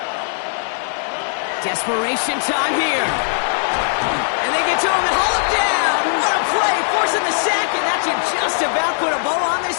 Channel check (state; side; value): silent; right; digital silence